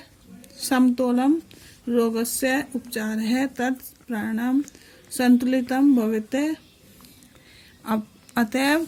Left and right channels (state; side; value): identical; both; correlation 1.00